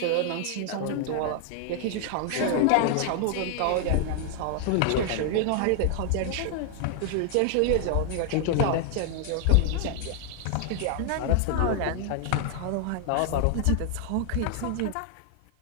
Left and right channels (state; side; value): different; both; correlation 0.00